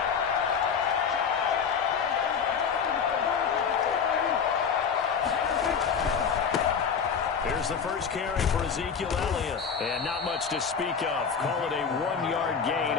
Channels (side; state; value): right; quieter; 6.5 dB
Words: Here's the first carry for Ezekiel Elliott. And not much to speak of. Call it a 1-yard gain